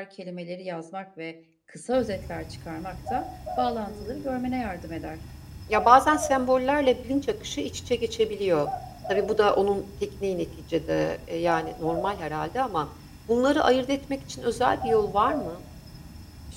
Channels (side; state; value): both; identical; correlation 1.00